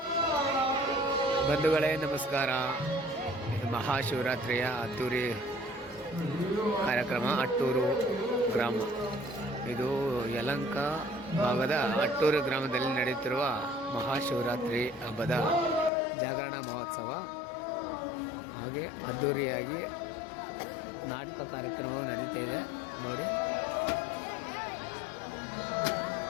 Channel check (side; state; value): right; drops out; at 15.9 s